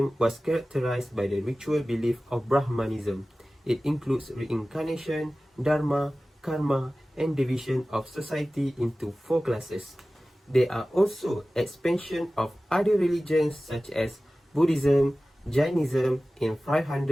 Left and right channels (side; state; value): both; normal; correlation 0.96